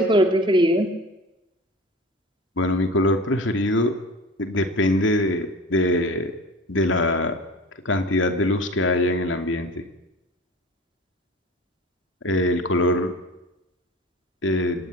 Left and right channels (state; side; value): normal; both; correlation 0.37